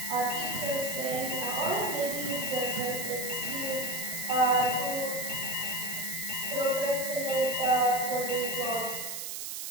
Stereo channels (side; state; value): right; noise; hiss, 5 dB below the sound